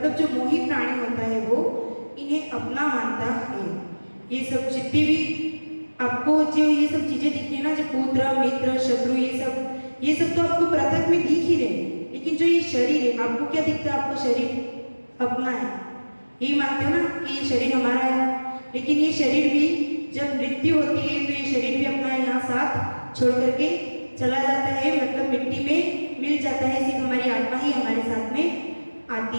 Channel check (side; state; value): both; inverted; correlation -1.00